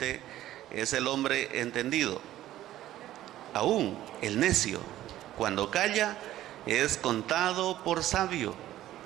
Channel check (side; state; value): left; quieter; 13.8 dB